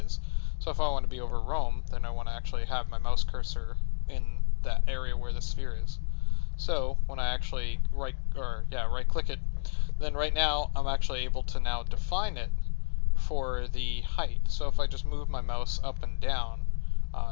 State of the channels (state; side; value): silent; right; 58 dB below the other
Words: is. So if I want to be over Rome, then I want to actually have my mouse cursor in that area where the sphere is. So when I actually right click it, then right now I'm actually able to now define it for the height. So if I just move my mouse up and down,